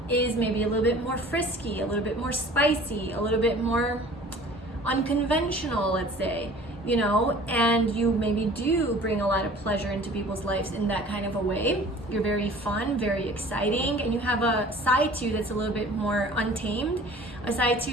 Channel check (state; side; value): normal; both; correlation 0.47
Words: is maybe a little bit more frisky, a little bit more spicy, a little bit more unconventional, let's say, you know, and you maybe do bring a lot of pleasure into people's lives in that kind of a way. You're very fun, very exciting, and you have a side to you that's a little bit more untamed, a side to